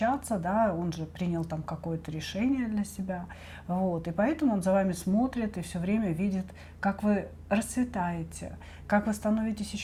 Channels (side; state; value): both; identical; correlation 1.00